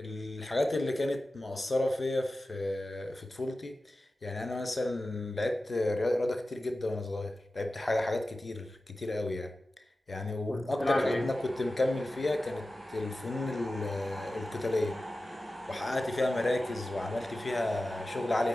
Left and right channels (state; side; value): normal; both; correlation 0.94